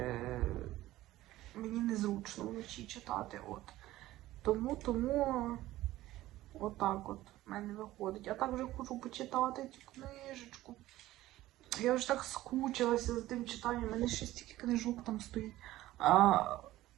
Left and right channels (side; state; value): left; quieter; 15.9 dB